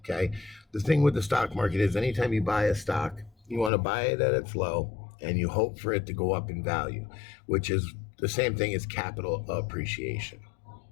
The thing with the stock market is anytime you buy a stock, you want to buy it at its low and you hope for it to go up in value, which is the same thing as capital appreciation.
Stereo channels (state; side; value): drops out; right; at 3.7 s